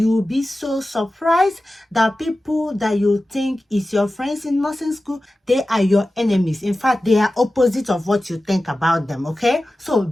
be so surprised that people that you think is your friends in nursing school, they are your enemies. In fact, they are opposite of what you think about them, okay? So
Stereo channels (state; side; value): normal; both; correlation 0.95